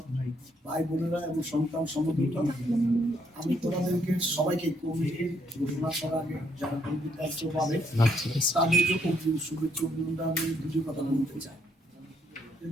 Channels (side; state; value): both; normal; correlation 0.72